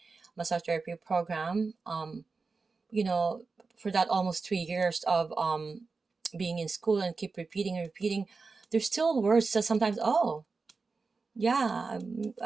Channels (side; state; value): left; quieter; 4.3 dB